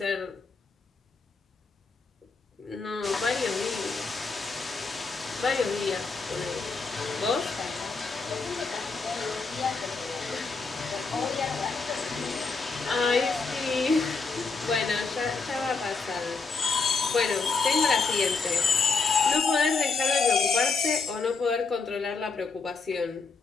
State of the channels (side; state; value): right; quieter; 4.4 dB